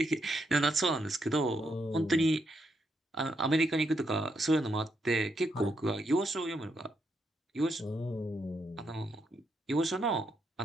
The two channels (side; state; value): both; normal; correlation 0.79